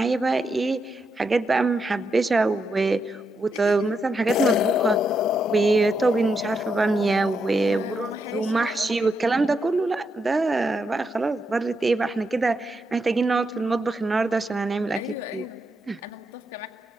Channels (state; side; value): normal; both; correlation 0.82